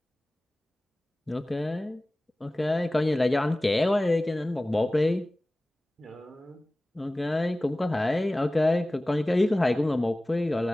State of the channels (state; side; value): normal; both; correlation 0.98